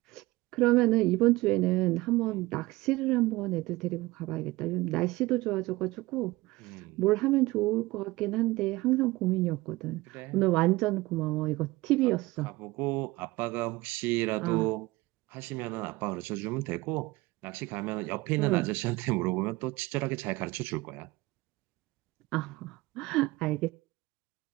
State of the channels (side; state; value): left; quieter; 20.4 dB